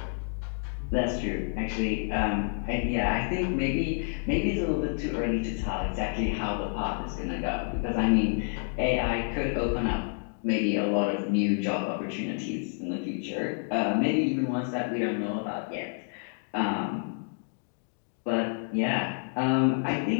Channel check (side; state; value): right; silent; 59 dB below the other